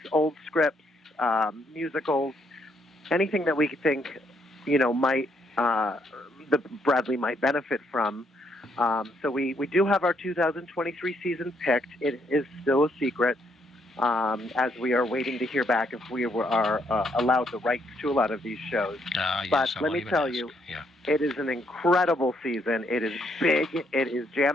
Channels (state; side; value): normal; both; correlation 0.73